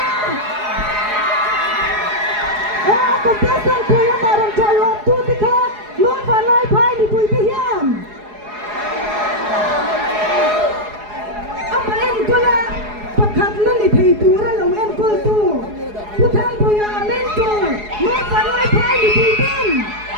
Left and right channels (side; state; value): left; late; 4.8 ms